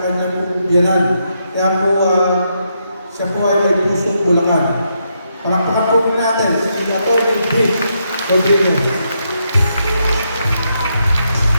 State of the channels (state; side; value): inverted; both; correlation -0.80